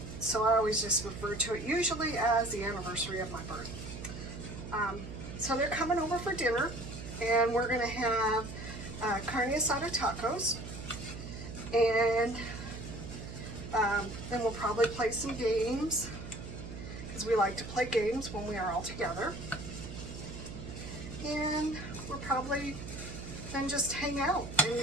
So I always just refer to it usually as the anniversary of my birth. So they're coming over for dinner, and we're going to have carne asada tacos, and then we'll probably play some games, because we like to play games when we are all together. And we'll probably then just hang out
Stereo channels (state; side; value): noise; right; hum, 10 dB below the sound